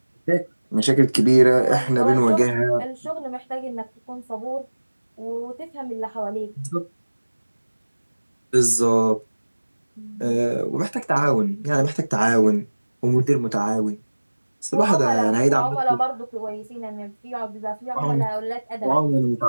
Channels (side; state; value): both; inverted; correlation -1.00